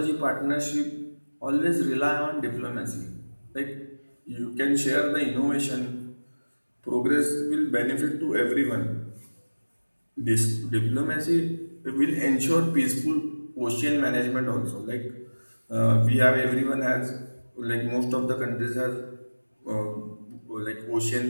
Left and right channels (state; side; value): inverted; both; correlation -1.00